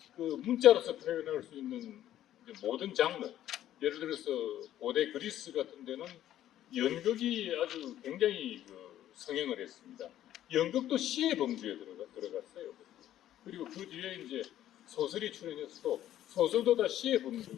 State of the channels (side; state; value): right; quieter; 12.3 dB